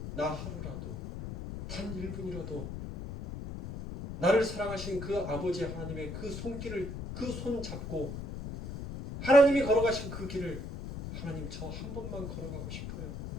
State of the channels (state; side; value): noise; left; rumble, 7 dB below the sound